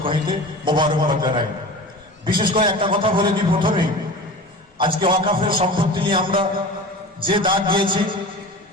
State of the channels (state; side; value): normal; both; correlation 0.35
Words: হইতে মোবারকবাদ জানাই। বিশেষ করে একটা কথা বলে দিই প্রথমেই, আজকে ওয়াকাফের সম্পত্তি নিয়ে আমরা যে দাগ দিয়েছি